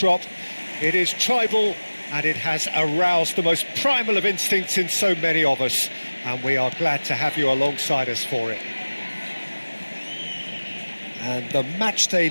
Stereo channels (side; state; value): both; inverted; correlation -1.00